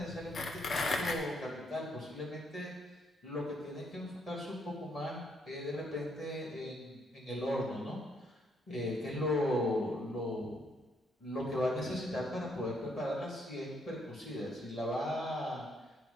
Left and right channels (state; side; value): normal; both; correlation 0.72